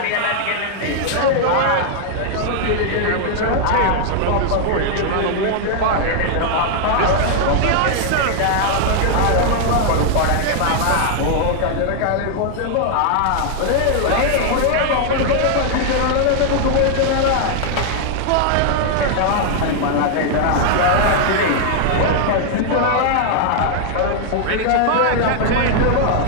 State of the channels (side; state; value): both; different; correlation 0.00